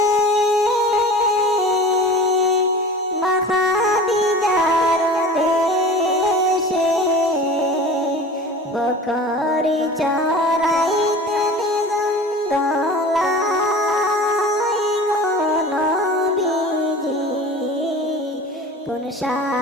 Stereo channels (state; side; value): normal; both; correlation 0.38